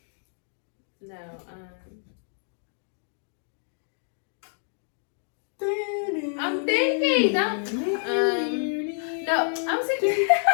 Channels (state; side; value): silent; right; 60 dB below the other